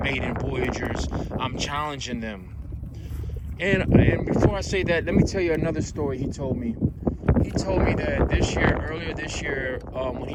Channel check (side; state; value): both; identical; correlation 1.00